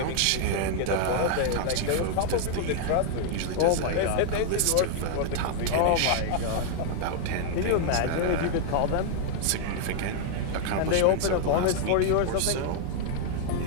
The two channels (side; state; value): both; different; correlation -0.01